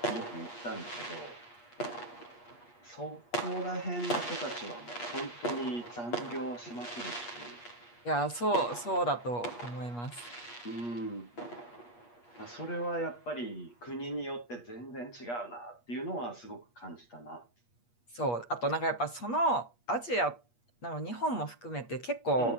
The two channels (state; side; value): late; right; 8.4 ms